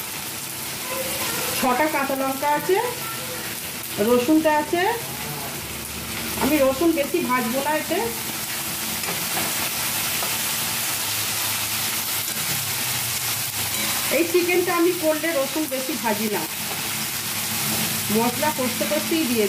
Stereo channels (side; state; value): both; identical; correlation 1.00